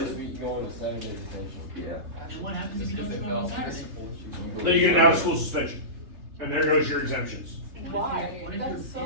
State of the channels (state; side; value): late; left; 3.3 ms